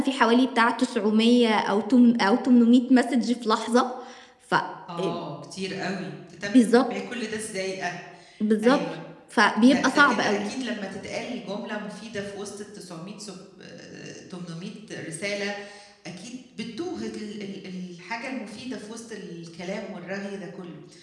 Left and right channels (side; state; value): both; identical; correlation 1.00